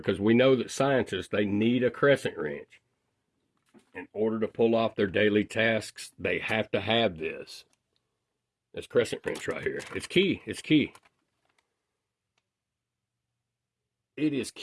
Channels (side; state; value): both; identical; correlation 1.00